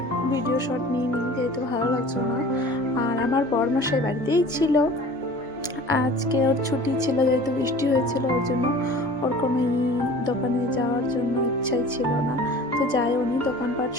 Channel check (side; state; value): both; normal; correlation 0.43